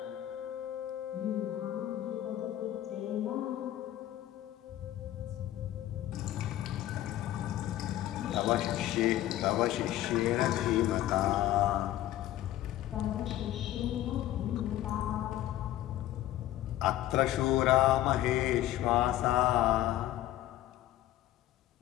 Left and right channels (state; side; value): quieter; right; 13.9 dB